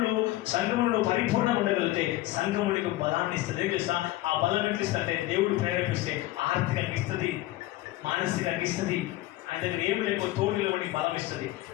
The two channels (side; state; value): right; quieter; 17.0 dB